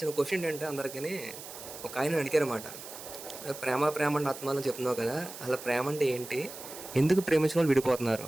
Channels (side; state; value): right; noise; hiss, 13 dB below the sound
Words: క్వశ్చన్ ఏంటంటే అందరికీ ఒక ఆయన అడిగారన్నమాట. ప్రేమ ప్రేమ అంటే ఆత్మానం చెప్తున్నావు కదా, అలా ప్రేమ అంటే ఏంటి? ఎందుకు ప్రేమించిన వాళ్ళు విడిపోతున్నారు?